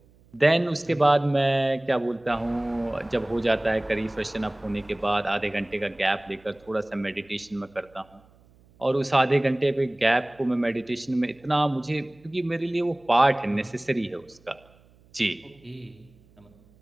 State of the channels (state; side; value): noise; right; hum, 29 dB below the sound